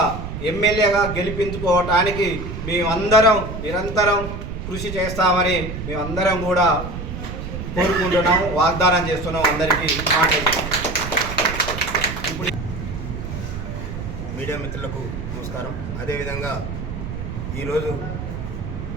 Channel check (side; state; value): right; noise; rumble, 7 dB below the sound